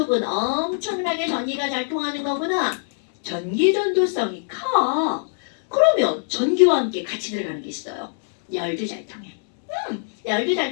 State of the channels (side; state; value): right; silent; digital silence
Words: 엄청나게 전기가 잘 통하는 거구나. 전기 전도성이 커. 그러면 전기와 함께 같이 들어가는 게 있어요. 열도 잘 통해. 열도